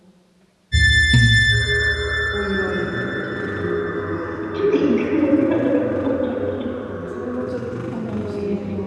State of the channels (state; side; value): identical; both; correlation 1.00